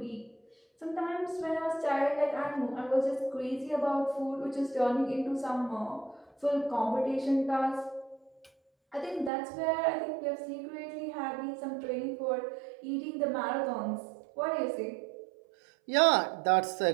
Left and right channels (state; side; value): drops out; left; at 9.3 s